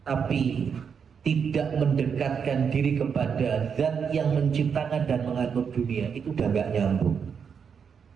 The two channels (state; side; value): quieter; left; 6.7 dB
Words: tapi tidak mendekatkan diri kepada zat yang menciptakan dan mengatur dunia, itu udah gak nyambung.